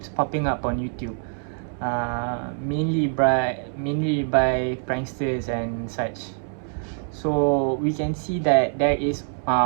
popping up on YouTube, mainly by pranksters and such. So we can see that there is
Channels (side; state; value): left; silent; digital silence